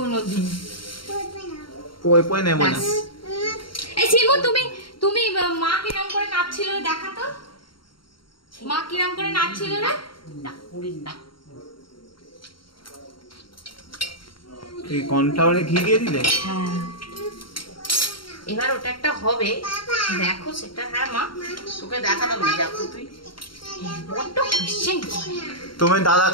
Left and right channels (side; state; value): right; late; 0.73 ms